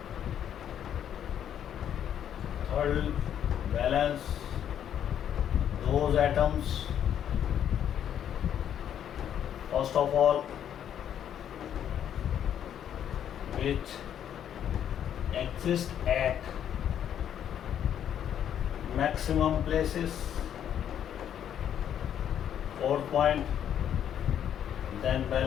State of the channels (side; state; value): right; quieter; 9.6 dB